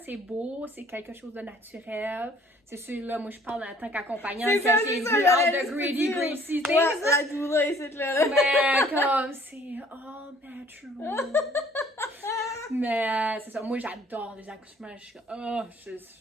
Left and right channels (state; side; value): normal; both; correlation 0.57